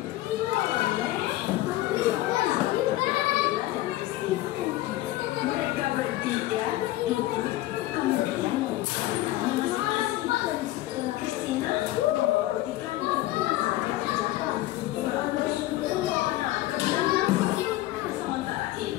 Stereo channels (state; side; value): quieter; right; 16.5 dB